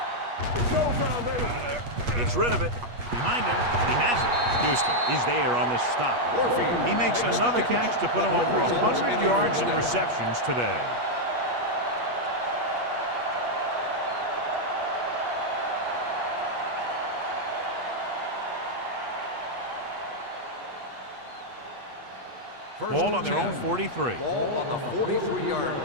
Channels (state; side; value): late; left; 8.3 ms